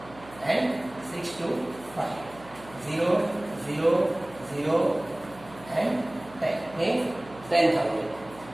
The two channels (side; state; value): right; noise; hum, 20 dB below the sound